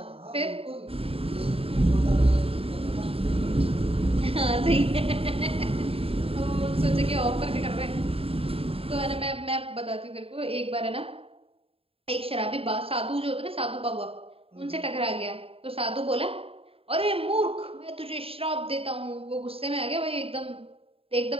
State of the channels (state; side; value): late; left; 0.27 ms